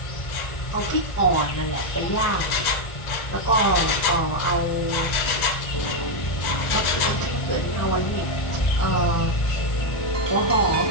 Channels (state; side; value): late; right; 1.4 ms